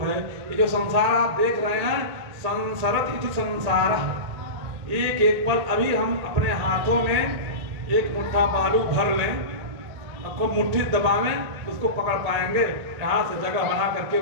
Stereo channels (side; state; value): left; late; 1.8 ms